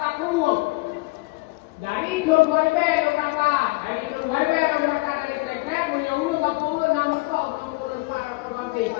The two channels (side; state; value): right; quieter; 23.6 dB